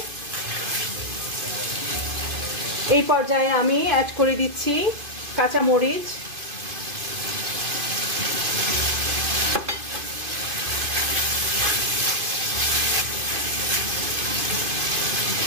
এই পর্যায়ে আমি অ্যাড করে দিচ্ছি কাঁচা মরিচ,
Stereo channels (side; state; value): left; late; 2.5 ms